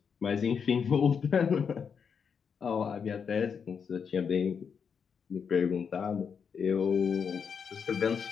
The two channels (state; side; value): quieter; right; 6.6 dB